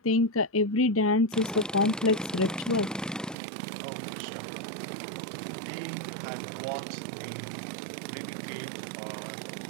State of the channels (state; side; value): drops out; left; at 3.4 s